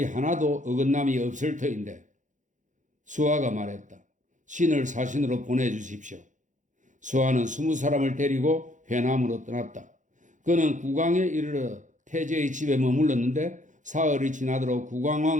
하나도 어긋남이 없을 터인데. 수하가 말했다. 신을 사신으로 보내주십시오. 수하는 20사람을 데리고 회남으로 떠났다. 그는 국왕에 이르러 태제의 집에 머물렀는데 사흘이 지나도록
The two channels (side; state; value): left; late; 0.36 ms